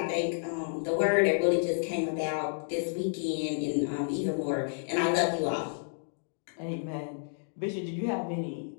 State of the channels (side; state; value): right; silent; digital silence